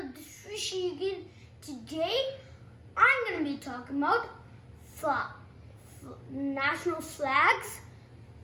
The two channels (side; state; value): both; identical; correlation 1.00